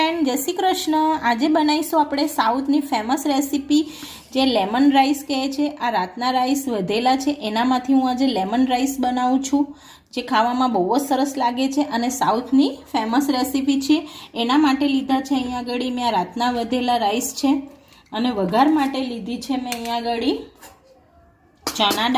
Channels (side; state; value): both; identical; correlation 1.00